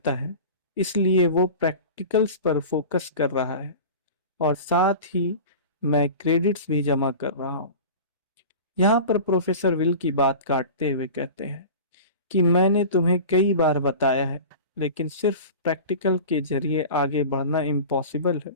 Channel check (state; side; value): inverted; both; correlation -0.35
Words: है इसलिए वो प्रैक्टिकल्स पर फोकस कर रहा है, और साथ ही मैं क्रेडिट्स भी जमा कर रहा हूँ। यहाँ पर प्रोफेसर विल की बात काटते हुए कहते हैं कि मैंने तुम्हें कई बार बताया है, लेकिन सिर्फ प्रैक्टिकल के जरिए आगे बढ़ना इम्पॉसिबल है